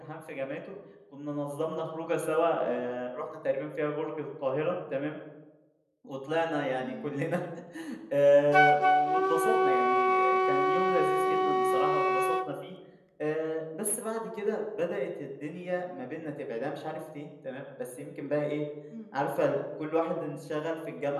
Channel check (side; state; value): both; identical; correlation 1.00